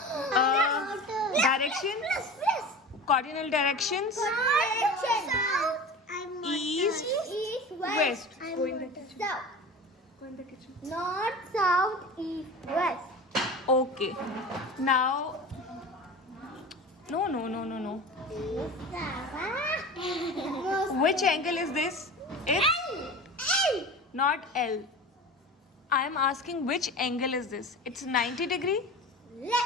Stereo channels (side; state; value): both; normal; correlation 0.34